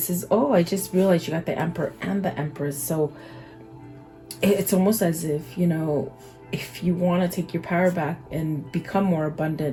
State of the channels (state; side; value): identical; both; correlation 1.00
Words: is, I just realized you got the Emperor and the Empress. So it's almost as if, if you want to take your power back and become more